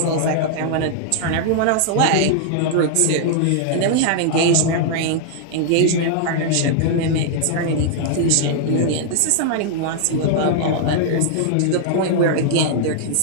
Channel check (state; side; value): different; both; correlation -0.01